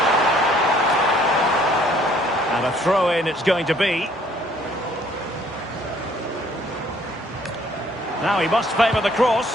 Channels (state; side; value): normal; both; correlation 0.61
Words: And a throw-in it's going to be. Now he must favour the